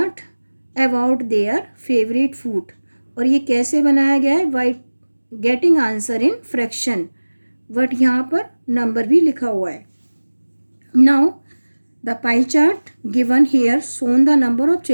about their favourite food. और ये कैसे बनाया गया है? By getting answer in fraction. But यहाँ पर नंबर भी लिखा हुआ है. Now the pie chart given here shown the number of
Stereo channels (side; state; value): both; inverted; correlation -1.00